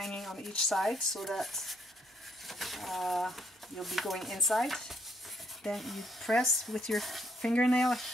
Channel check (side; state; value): both; normal; correlation 0.70